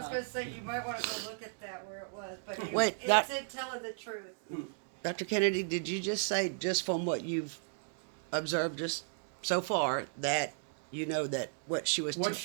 going to say, you might want to go look at that where it was, but Wait, it's it telling the truth. Dr. Kennedy, did you just say, just from what you've observed just so far, that you know that what she was What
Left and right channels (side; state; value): left; silent; digital silence